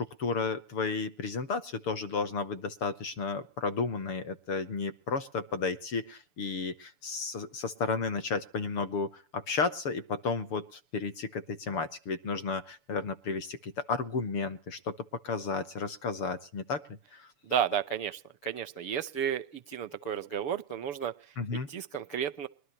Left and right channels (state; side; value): late; right; 6.9 ms